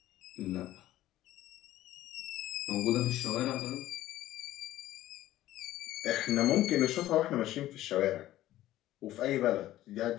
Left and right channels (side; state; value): right; quieter; 14.5 dB